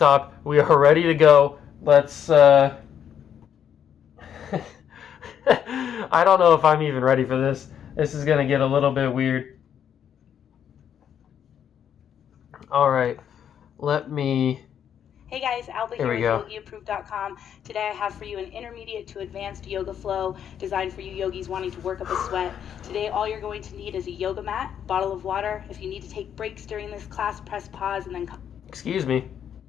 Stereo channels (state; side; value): quieter; right; 8.9 dB